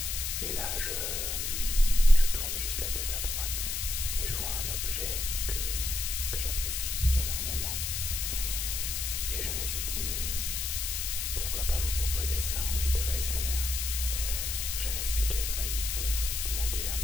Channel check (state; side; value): noise; left; hiss, 2 dB below the sound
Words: Et là, je tourne juste la tête à droite et je vois un objet que j'apprécie énormément. Et je me suis dit, mais pourquoi pas vous proposer ça en vidéo ASMR? Je vais m'expliquer très vite, vous demander un